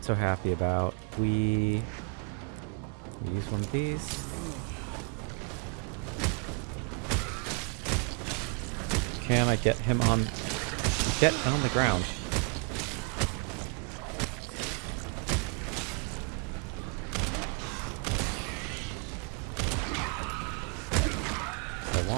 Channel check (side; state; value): left; quieter; 37.3 dB